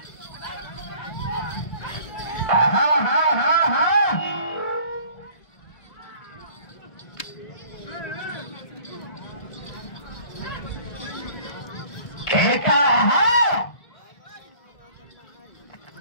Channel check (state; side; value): late; right; 1.8 ms